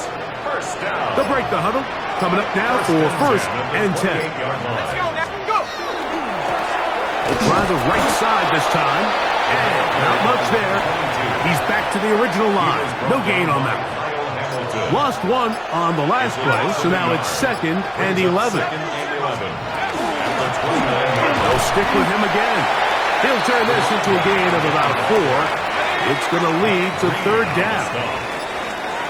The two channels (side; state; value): both; identical; correlation 1.00